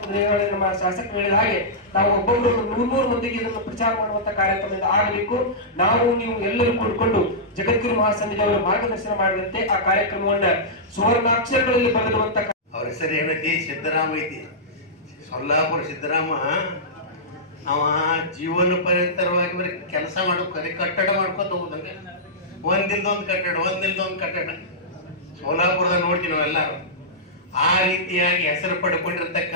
ನಮ್ಮ ಶಾಸಕರು ಹೇಳಿದ ಹಾಗೆ ನಾವು ಒಬ್ಬೊಬ್ಬರು 100 ಮಂದಿಗೆ ಇದನ್ನು ಪ್ರಚಾರ ಮಾಡುವಂತ ಕಾರ್ಯಕ್ರಮದಿಂದ ಆಗಬೇಕು. ನಾವು ನೀವು ಎಲ್ಲರೂ ಕೂಡಿಕೊಂಡು ಜಗದ್ಗುರು ಮಹಾಸಂಘದವರ ಮಾರ್ಗದರ್ಶನ ಮಾಡಿದಂತೆ ಆ ಕಾರ್ಯಕ್ರಮವನ್ನ ಸುವರ್ಣಾಕ್ಷರಗಳಲ್ಲಿ ಬರೆದಿರುವಂತ. ಅವ್ರ ಹೆಸರು ಏನೈತಿ? ಸಿದ್ದರಾಮ ಐತಿ. ಸೊಲ್ಲಾಪುರ ಸಿದ್ದರಾಮ. ಅವ ಜೀವನ ಪರ್ಯಂತರವಾಗಿ ಬರೀ ಕೆಲಸ ಮಾಡೋಕೆ ಕಟ್ಟಡ ಮಾಡ್ಕೊತ ಹೋಗುದಂಗೆ, ಒಂದಿಲ್ದೊಂದು ಕಟ್ಟಡ ಸೋಲಾಪುರದಾಗ ನೋಡ್ತೀವಿ ನಾವೆಲ್ಲರೂ. ಆ ರೀತಿಯಾಗಿ ಹೆಸರು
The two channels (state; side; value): normal; both; correlation -0.14